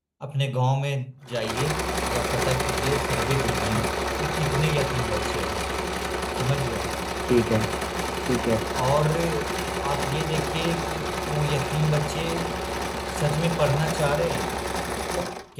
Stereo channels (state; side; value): identical; both; correlation 1.00